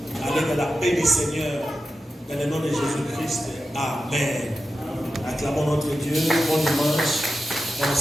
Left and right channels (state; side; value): normal; both; correlation 0.92